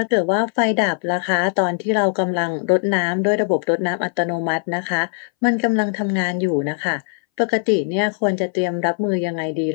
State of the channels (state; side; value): silent; right; 62 dB below the other